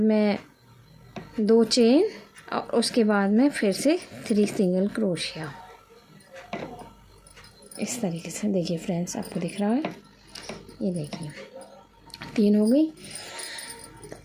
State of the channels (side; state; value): both; identical; correlation 1.00